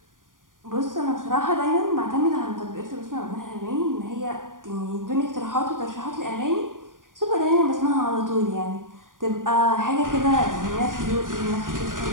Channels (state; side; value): late; left; 0.90 ms